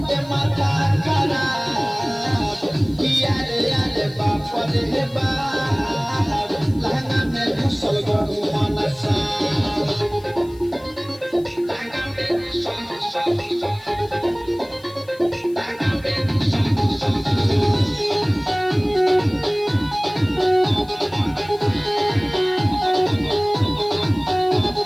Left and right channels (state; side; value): noise; left; hiss, 26 dB below the sound